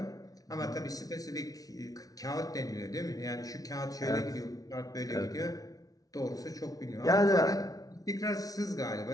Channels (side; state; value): right; late; 0.18 ms